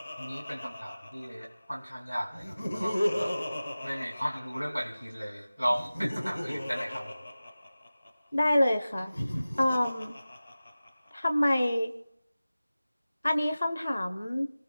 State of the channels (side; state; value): both; inverted; correlation -0.97